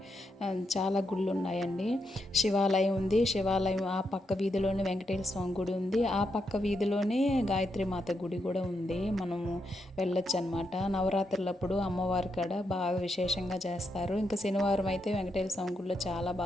చాలా గుళ్ళు ఉన్నాయండి. శివాలయం ఉంది, శివాలయం ఆ పక్క వీధిలోనే వెంకటేశ్వర స్వామి గుడి ఉంది, ఆ పక్క వీధిలోనే గాయత్రి మాత గుడి కూడా ఉంది. మనము వెళ్ళొచ్చు అనమాట. నవరాత్రులప్పుడు అమ్మవారి కాడ బాగా విశేషంగా చేస్తారు. ఇంకా శనివారం అయితే వెంకటేశ్వర స్వామి గుడిలో చాలా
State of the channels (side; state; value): both; normal; correlation 0.82